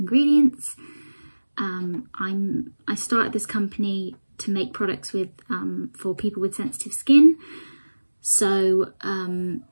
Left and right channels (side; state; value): both; inverted; correlation -1.00